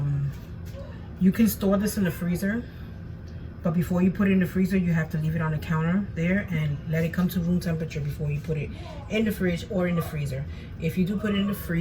you can store this in the freezer, but before you put it in the freezer, you have to leave it on the counter there and let it come to room temperature before you put it in the fridge or in the freezer. If you do put it in the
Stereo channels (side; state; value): both; identical; correlation 1.00